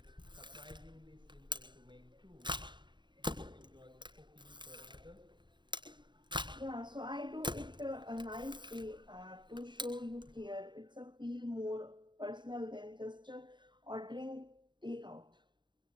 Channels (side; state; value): left; late; 0.22 ms